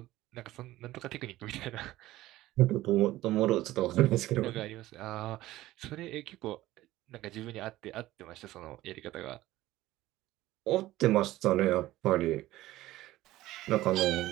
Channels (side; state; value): left; quieter; 16.3 dB